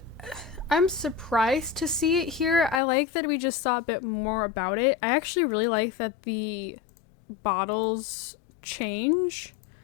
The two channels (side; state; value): right; drops out; at 2.8 s